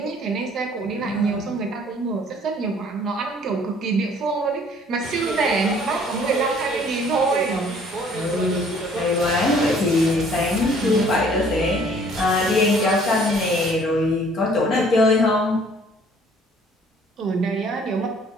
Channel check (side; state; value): both; normal; correlation 0.57